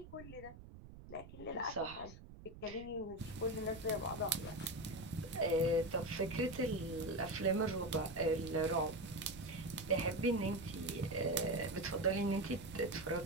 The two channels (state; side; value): noise; right; rumble, 16 dB below the sound